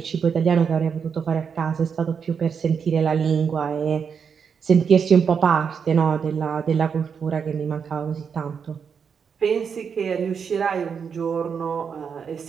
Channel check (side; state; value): left; quieter; 6.6 dB